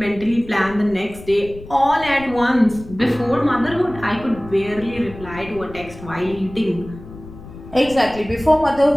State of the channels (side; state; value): left; noise; rumble, 16 dB below the sound